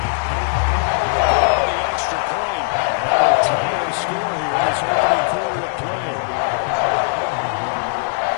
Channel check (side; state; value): right; silent; digital silence